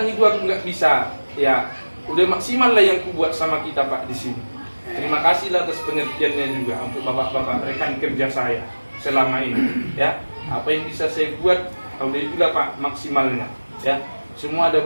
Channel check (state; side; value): inverted; both; correlation -1.00